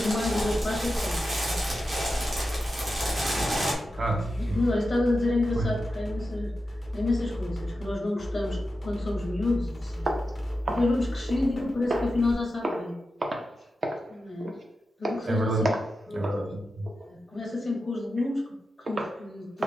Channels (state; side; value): normal; both; correlation 0.91